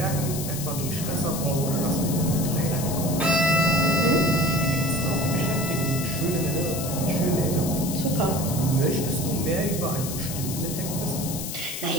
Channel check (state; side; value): noise; left; hiss, 7 dB below the sound